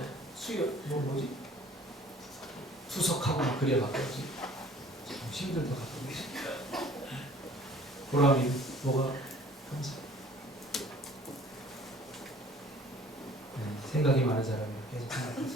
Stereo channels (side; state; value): both; normal; correlation 0.53